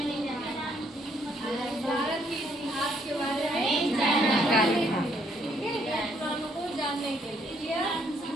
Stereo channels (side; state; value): both; normal; correlation 0.69